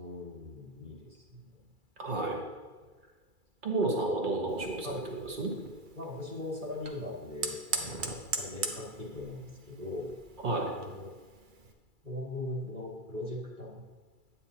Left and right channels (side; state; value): left; late; 2.3 ms